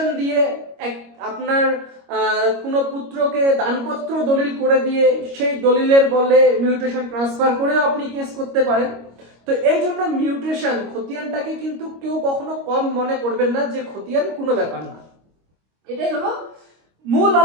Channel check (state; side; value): late; left; 25 ms